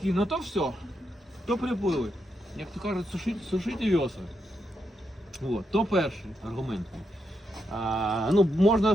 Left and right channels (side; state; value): both; normal; correlation 0.82